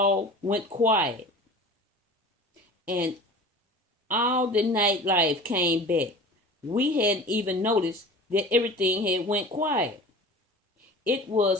went quiet. And all the nightlife came back. We hadn't even noticed that everything had went quiet. It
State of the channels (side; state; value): both; normal; correlation 0.39